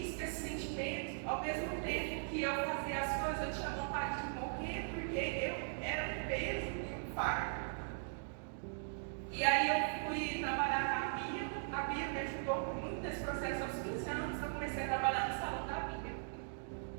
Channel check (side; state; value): left; silent; digital silence